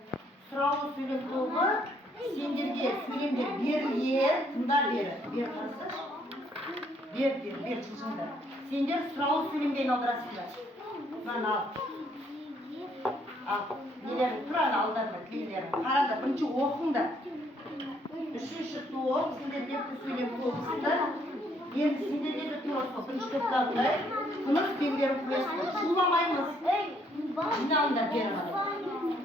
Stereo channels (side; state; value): both; normal; correlation 0.68